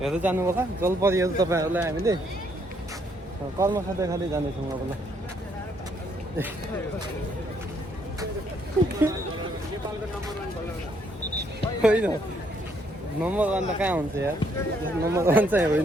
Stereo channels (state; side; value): normal; both; correlation 0.70